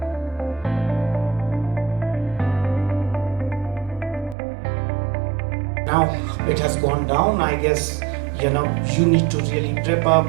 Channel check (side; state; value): left; drops out; at 4.4 s